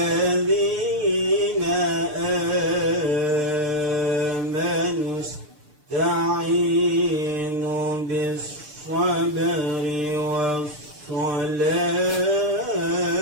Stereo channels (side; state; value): left; late; 6.7 ms